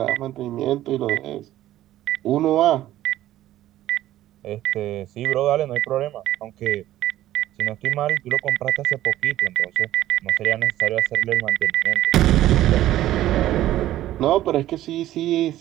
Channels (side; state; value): left; quieter; 13.9 dB